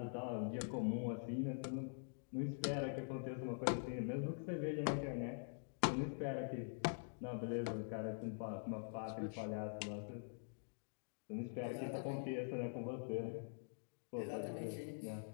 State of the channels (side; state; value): right; silent; digital silence